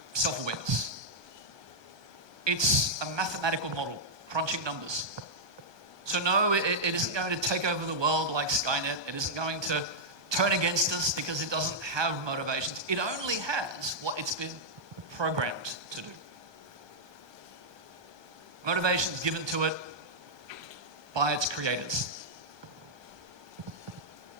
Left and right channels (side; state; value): left; late; 1.2 ms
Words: self-awareness. It's a mathematical model, crunching numbers. So no, it isn't going to take over the world like Skynet. It isn't going to turn against us because it doesn't have motivations. It only has what it's been programmed to do. Motivations given to it by its creators.